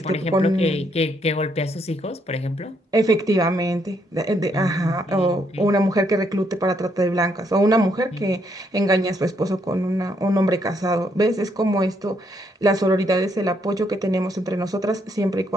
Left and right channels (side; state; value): both; normal; correlation 0.73